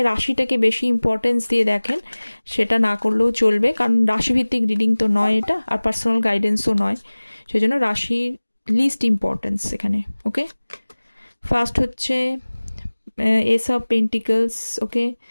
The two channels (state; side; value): inverted; both; correlation -1.00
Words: রাশিটাকে বেশি ইম্পর্টেন্স দিয়ে দেখেন, সেটা না করলেও চলবে, কারণ রাশিভিত্তিক রিডিং তো নয় এটা, আর পার্সোনাল গাইডেন্সও নয়, সেই জন্য রাশির লিস্ট ইম্পর্টেন্স এখানে। ওকে, ফার্স্ট হচ্ছে S of pentacles. Okay,